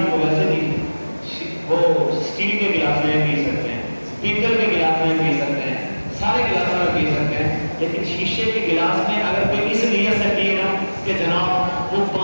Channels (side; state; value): both; inverted; correlation -1.00